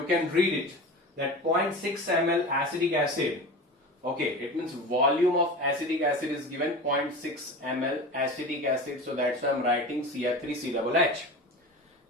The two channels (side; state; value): both; normal; correlation 0.31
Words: can read it, that 0.6 ml acetic acid. Okay, it means volume of acetic acid is given 0.6 ml acetic acid. So that's why I'm writing Cr3COOH.